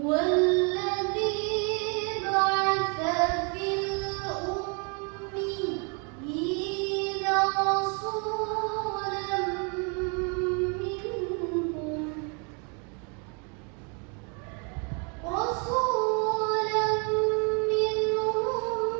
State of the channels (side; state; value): left; quieter; 35.9 dB